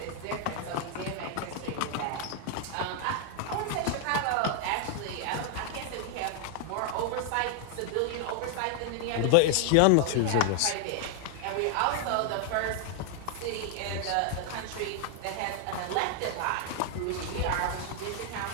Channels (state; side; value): different; both; correlation 0.00